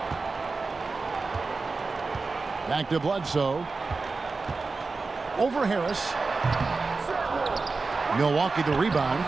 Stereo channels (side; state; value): left; quieter; 4.0 dB